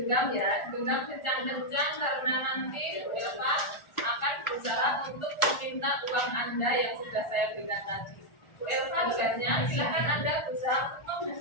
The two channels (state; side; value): late; right; 1.4 ms